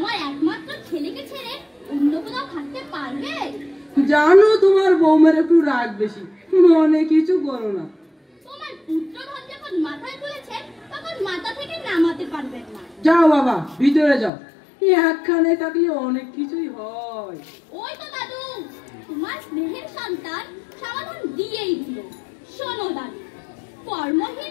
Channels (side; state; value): right; drops out; at 14.3 s